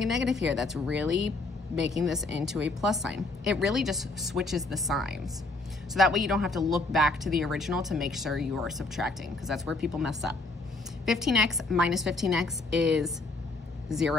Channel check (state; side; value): quieter; right; 3.2 dB